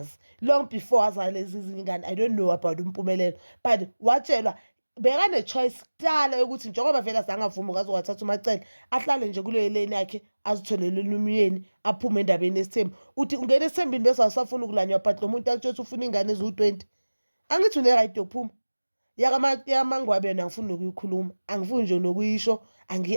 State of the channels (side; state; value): both; inverted; correlation -1.00